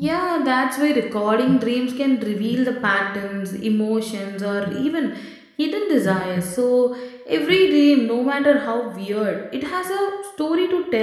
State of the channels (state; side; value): identical; both; correlation 1.00